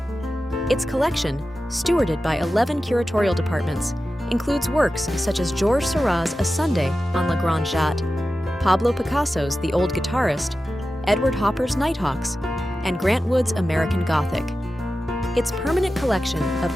Its collection, stewarded by 11 curatorial departments, includes works such as Georges Seurat's A Sunday on La Grande Jatte, Pablo Picasso's The Old Guitarist, Edward Hopper's Nighthawks, and Grant Wood's American Gothic. Its permanent collection of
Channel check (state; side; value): normal; both; correlation 0.93